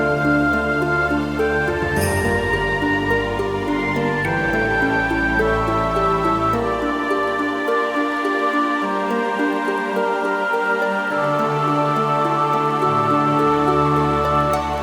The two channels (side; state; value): both; identical; correlation 1.00